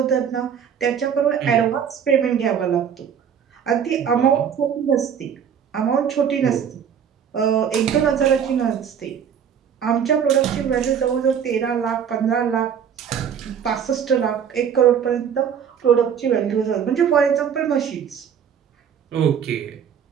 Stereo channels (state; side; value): quieter; left; 8.0 dB